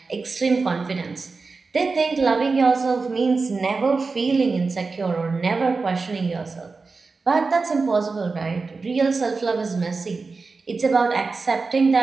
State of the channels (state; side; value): quieter; left; 4.2 dB